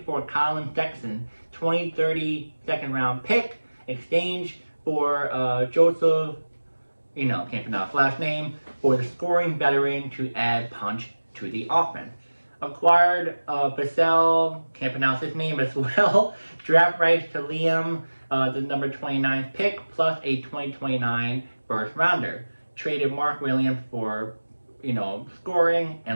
for Colin Sexton, 2030 second round pick, exchange for Joseph, can't pronounce his last name, for the scoring veteran to add punch to the offense. Acquired Basel, can't pronounce his name as well, draft rights to Liam, the number 29 pick, plus a 2029 first rounder. Traded Mark Williams for, scoring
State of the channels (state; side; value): inverted; both; correlation -1.00